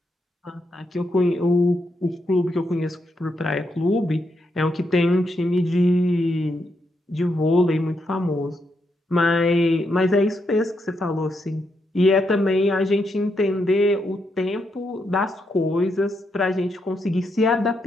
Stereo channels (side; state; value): both; normal; correlation 0.81